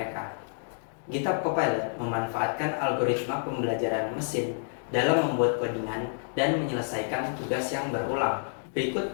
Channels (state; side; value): silent; right; digital silence